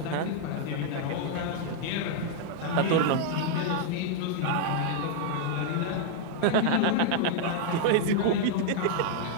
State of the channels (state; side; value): different; both; correlation 0.00